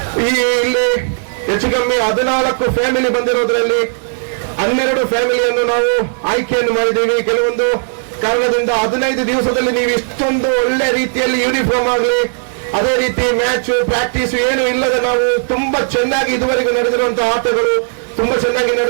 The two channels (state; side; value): silent; left; digital silence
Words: ಇಲ್ಲಿ ಹೆಚ್ಚು ಕಮ್ಮಿ 14 ಫ್ಯಾಮಿಲಿ ಬಂದಿರೋದ್ರಲ್ಲಿ 12 ಫ್ಯಾಮಿಲಿಯನ್ನು ನಾವು ಆಯ್ಕೆಯನ್ನು ಮಾಡಿದ್ದೀವಿ. ಕೆಲವೊಂದು ಕಾರಣದಿಂದ 15 ದಿವಸದಲ್ಲಿ ನೀವು ಇಷ್ಟೊಂದು ಒಳ್ಳೆ ರೀತಿಯಲ್ಲಿ ಯೂನಿಫಾರ್ಮ್ ಆಗಲಿ, ಅದೇ ರೀತಿ ಮ್ಯಾಚ್ ಪ್ರಾಕ್ಟೀಸ್ ಏನು ಇಲ್ಲದೆ ನಾವು ತುಂಬಾ ಚೆನ್ನಾಗಿ ಇದುವರೆಗೂ ನಡೆದಿರುವಂತಹ ಆಟಗಳು ತುಂಬಾ ಚೆನ್ನಾಗಿ